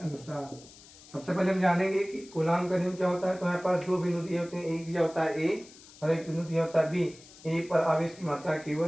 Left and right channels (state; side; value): noise; left; hiss, 21 dB below the sound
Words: सबसे पहले हम जानेंगे कि कूलाम का नियम क्या होता है। तो हमारे पास दो बिंदु दिए होते हैं, एक दिया होता है A और एक बिंदु दिया होता है B। A पर आवेश की मात्रा